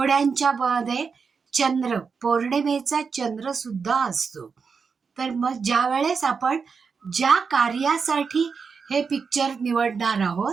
मध्ये चंद्र, पौर्णिमेचा चंद्र सुद्धा असतो. तर मग ज्या वेळेस आपण ज्या कार्यासाठी हे पिक्चर निवडणार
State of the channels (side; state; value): left; quieter; 5.5 dB